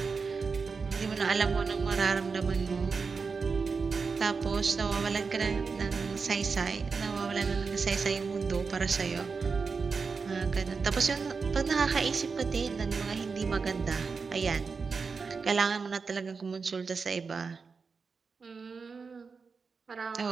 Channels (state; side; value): quieter; left; 5.0 dB